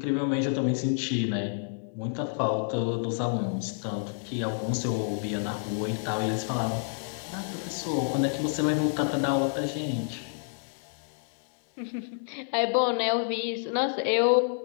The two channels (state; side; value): silent; right; digital silence